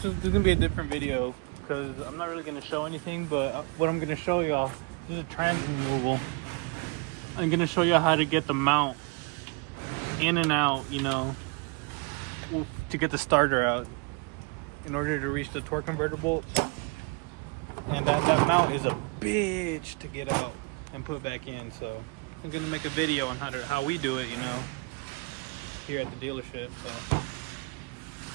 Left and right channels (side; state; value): left; quieter; 31.4 dB